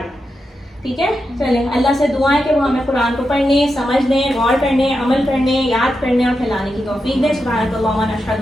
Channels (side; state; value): both; normal; correlation 0.88